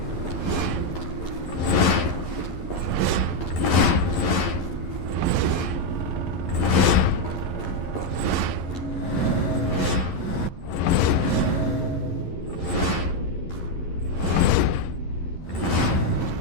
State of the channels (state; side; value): late; right; 11 ms